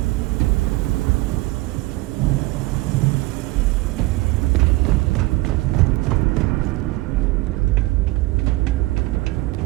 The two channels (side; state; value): left; quieter; 21.2 dB